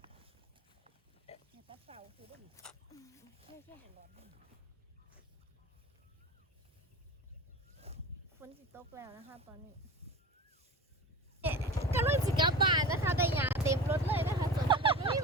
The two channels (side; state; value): both; normal; correlation 0.33